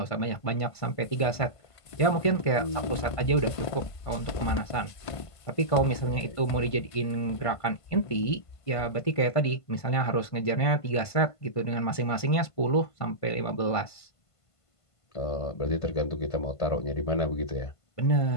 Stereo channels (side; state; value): right; late; 1.5 ms